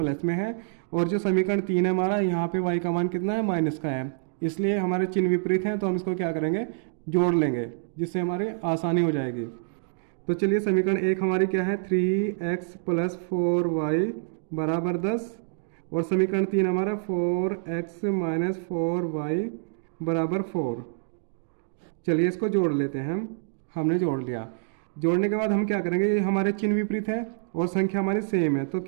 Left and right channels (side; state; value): left; silent; digital silence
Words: में है, और जो समीकरण 3 है हमारा, यहाँ पे y का मान कितना है, माइनस का है। इसलिए हमारे चिन्ह विपरीत हैं, तो हम इसको क्या करेंगे, जोड़ लेंगे, जिससे हमारी आसानी हो जाएगी। तो चलिए, समीकरण 1 हमारी क्या है, 3x + 4y = 10, और समीकरण 3 हमारा 4x - 4y = 4। चलिए, इसको जोड़ लेते हैं हमने जोड़ लिया। जोड़ने के बाद हम क्या करेंगे, ये हमारे चिन्ह विपरीत है और संख्या हमारी सेम है, तो